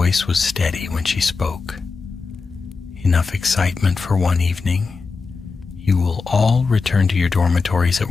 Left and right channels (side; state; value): right; quieter; 4.6 dB